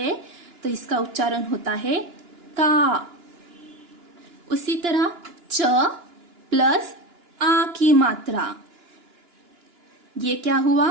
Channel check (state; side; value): late; left; 2.9 ms